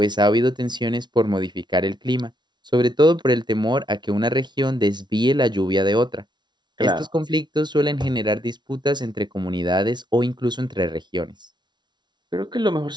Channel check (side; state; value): left; late; 0.21 ms